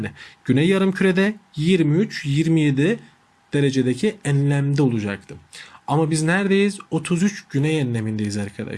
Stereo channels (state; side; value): identical; both; correlation 1.00